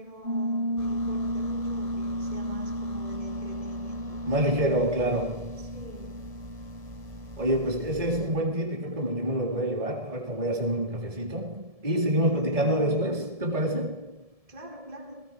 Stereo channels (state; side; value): late; left; 1.7 ms